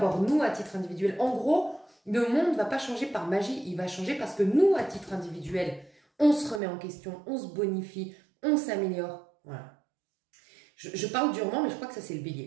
nous à titre individuel. En gros, le monde ne va pas changer par magie. Il va changer parce que nous, à titre individuel, on se remet en question, on se bonifie, on s'améliore. Voilà. Je parle durement, mais je crois que ça, c'est le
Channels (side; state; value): left; drops out; at 6.6 s